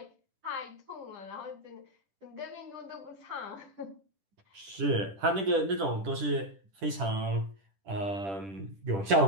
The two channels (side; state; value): left; late; 10 ms